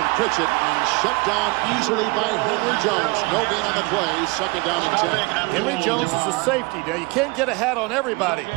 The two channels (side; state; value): left; quieter; 26.3 dB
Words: Pritchett and shut down easily by Henry Jones. No gain on the play, second down and 10. Henry Jones is a safety. Now, you can't get a hat on everybody.